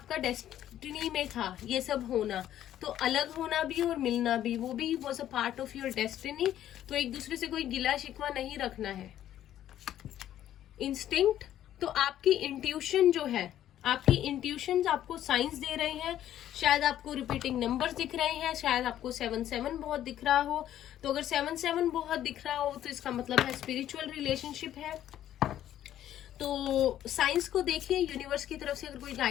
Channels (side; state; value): right; quieter; 11.8 dB